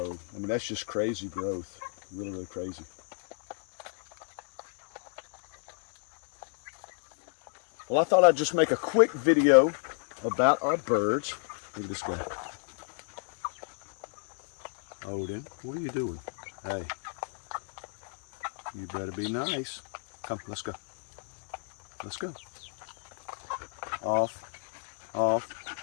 I mean, that's just crazy growth. Really crazy. Well, I thought I'd just make a quick video about our birds. Look at this guy. Odin, what are you doing? Hey, you better be nice. Come, let's go. Let's go. Off.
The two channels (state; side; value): silent; right; 56 dB below the other